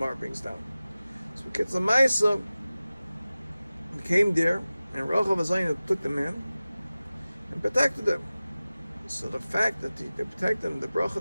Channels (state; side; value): inverted; both; correlation -0.97